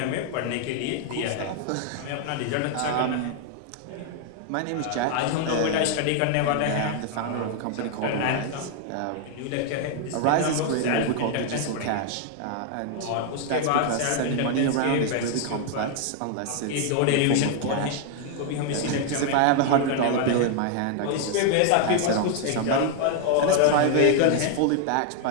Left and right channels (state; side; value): different; both; correlation 0.00